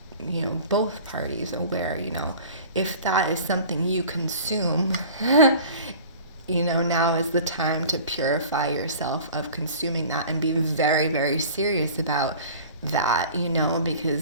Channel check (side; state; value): both; inverted; correlation -0.42